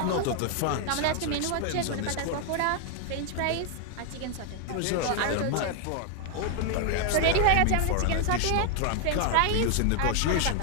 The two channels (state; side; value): different; both; correlation 0.00